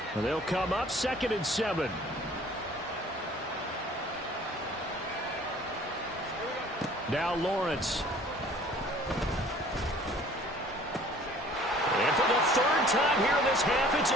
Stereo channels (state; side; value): normal; both; correlation 0.52